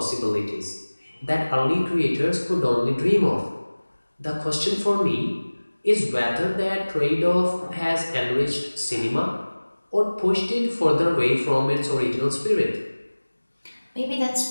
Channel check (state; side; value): inverted; both; correlation -1.00